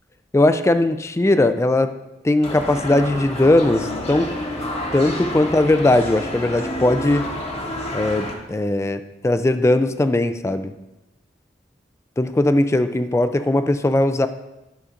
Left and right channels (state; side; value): normal; both; correlation 0.83